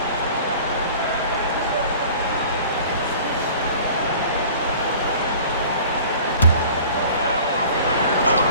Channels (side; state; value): both; inverted; correlation -0.45